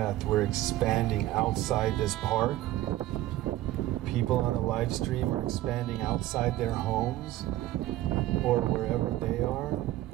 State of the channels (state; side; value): quieter; left; 15.4 dB